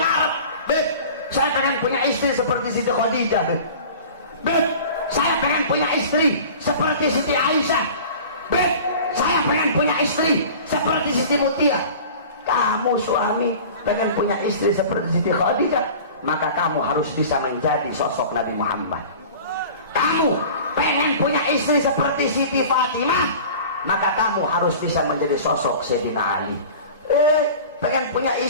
Beb, saya pengen punya istri seperti Siti Khadijah, Beb, saya pengen punya istri seperti Siti Aisyah, Beb, saya pengen punya istri seperti Siti Mutia. Kamu suami pengen punya istri seperti Siti Khadijah, maka kamu harus bisa menjadi sosok Nabi Muhammad. Kamu pengen punya istri seperti Siti Fatimah, maka kamu harus bisa menjadi sosok Sayyidina Ali. Pengen punya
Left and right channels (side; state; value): both; inverted; correlation -0.40